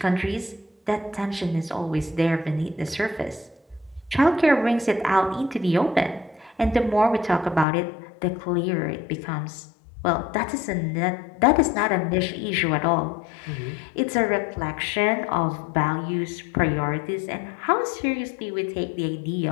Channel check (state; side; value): drops out; right; at 7.7 s